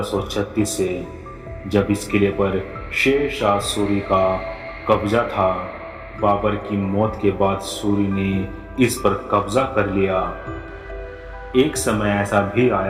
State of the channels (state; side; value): identical; both; correlation 1.00